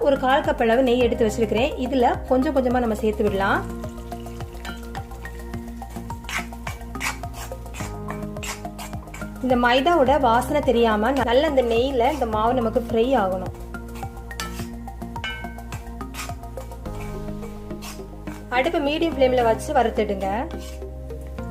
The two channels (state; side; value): identical; both; correlation 1.00